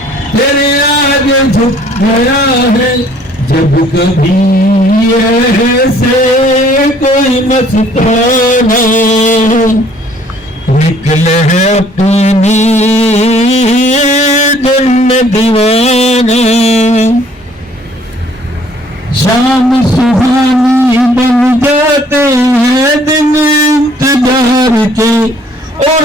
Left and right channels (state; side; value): normal; both; correlation 0.59